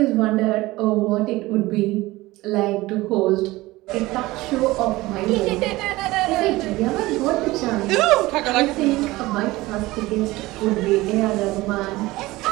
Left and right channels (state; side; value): quieter; left; 19.3 dB